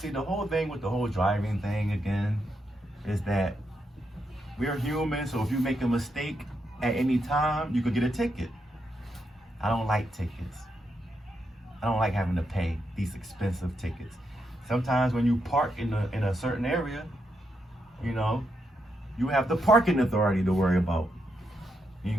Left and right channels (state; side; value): normal; both; correlation 0.82